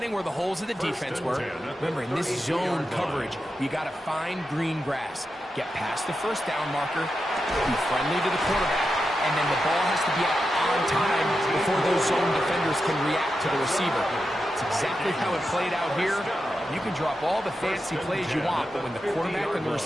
where the holes of the defense were. Remember, in this zone coverage, you got to find green grass. Get past the first down marker, be friendly to the quarterback, and then the ball has to be out on time before those zone defenders can react to the receiver. It's exactly how it played out here. You can drop all the fancy plays you want, but when the quarterback and the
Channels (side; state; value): both; normal; correlation 0.89